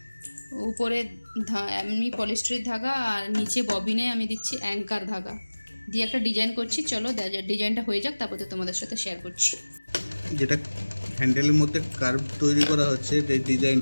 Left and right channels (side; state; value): both; inverted; correlation -1.00